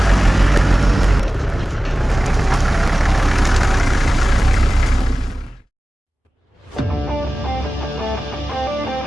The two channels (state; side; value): normal; both; correlation 0.96